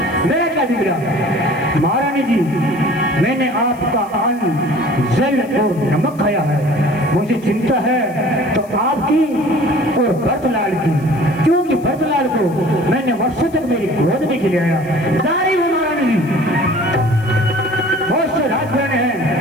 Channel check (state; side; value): noise; left; hiss, 26 dB below the sound